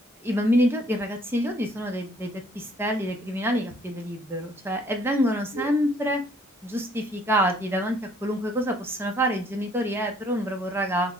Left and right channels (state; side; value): normal; both; correlation 0.62